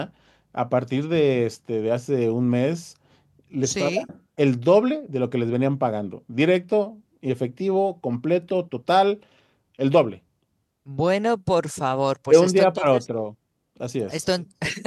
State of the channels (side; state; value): both; identical; correlation 1.00